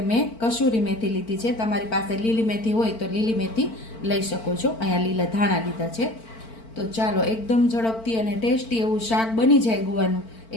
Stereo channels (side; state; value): right; late; 4.5 ms